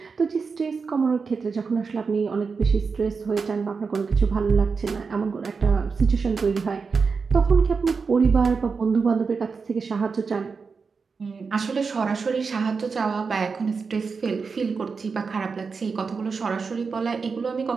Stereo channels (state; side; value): quieter; left; 5.0 dB